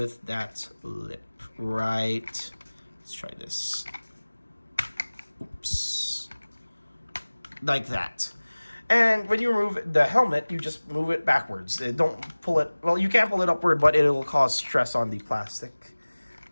that lip. Right. Let's try this. Oops. Like that. And when you remove the helmet, you just move it backwards. Don't pull it, well, you can pull it upward, but it'll cause stress on the plastic.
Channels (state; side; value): inverted; both; correlation -1.00